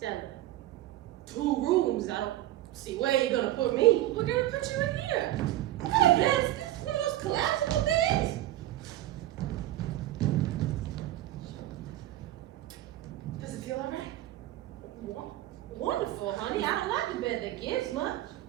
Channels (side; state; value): left; quieter; 14.4 dB